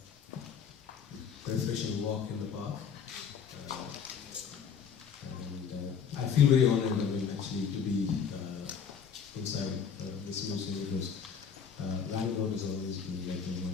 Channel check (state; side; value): quieter; right; 6.8 dB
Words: refreshing walk in the park. And I feel very honored, actually, to be inside this museum because Bangalore has always been one